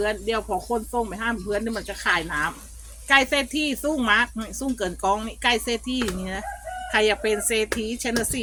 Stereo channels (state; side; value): identical; both; correlation 1.00